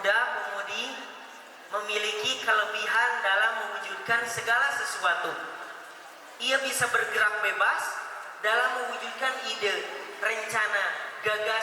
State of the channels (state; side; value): identical; both; correlation 1.00